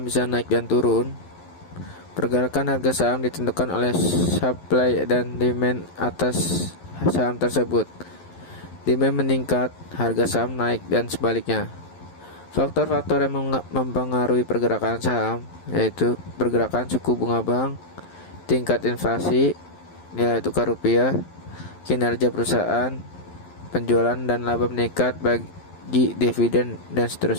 bisa naik dan turun? Pergerakan harga saham ditentukan oleh supply dan demand atas saham tersebut. Demand meningkat, harga saham naik dan sebaliknya. Faktor-faktor yang mempengaruhi pergerakan saham yaitu pergerakan suku bunga bank, tingkat inflasi, nilai tukar rupiah, kinerja perusahaan, penjualan dan laba meningkat bagi dividen dan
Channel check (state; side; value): late; right; 11 ms